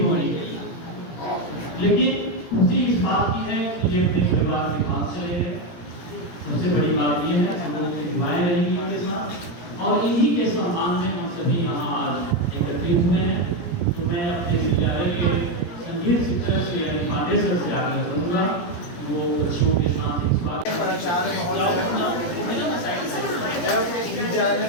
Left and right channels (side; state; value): right; late; 17 ms